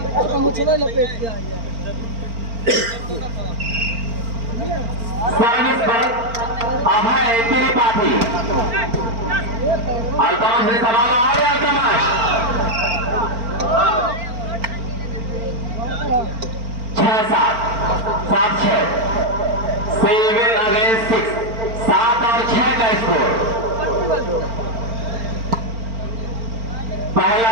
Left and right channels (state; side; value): late; left; 4.4 ms